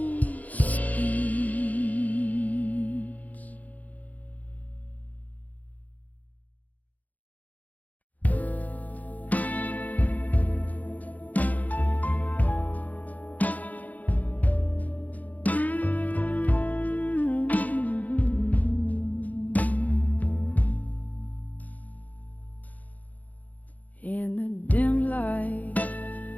spins. In the dim light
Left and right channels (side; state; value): right; late; 0.078 ms